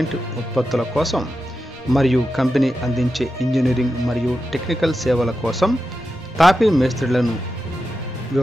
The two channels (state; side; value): normal; both; correlation 0.90